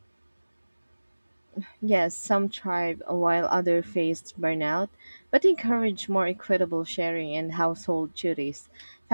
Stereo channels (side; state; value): both; inverted; correlation -1.00